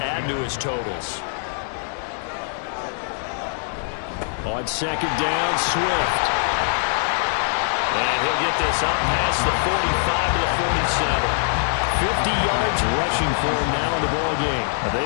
to his totals. On 2nd down, Swift. And he'll they'll get this up past the 45 to the 47. 50 yards rushing for him now in the ball game.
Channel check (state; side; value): silent; right; digital silence